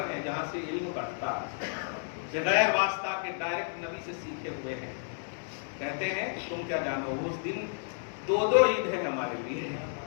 ہے جہاں سے علم بڑھتا ہے، بغیر واسطہ کے ڈائریکٹ نبی سے سیکھے ہوئے ہیں۔ کہتے ہیں تم کیا جانو، اس دن 2 عید ہے ہمارے لیے،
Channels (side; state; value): right; silent; 57 dB below the other